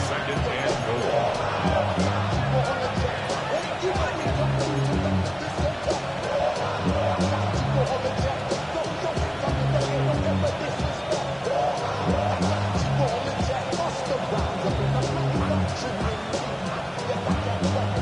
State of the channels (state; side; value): identical; both; correlation 1.00